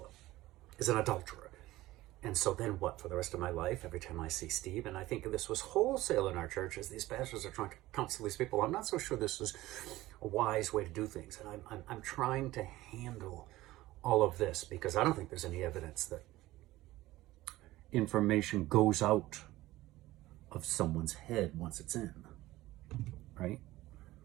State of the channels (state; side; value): quieter; left; 17.2 dB